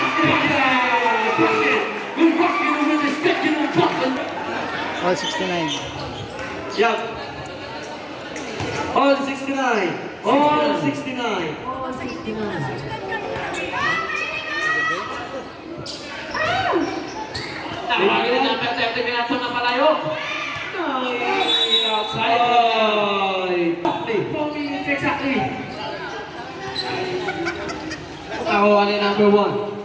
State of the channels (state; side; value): identical; both; correlation 1.00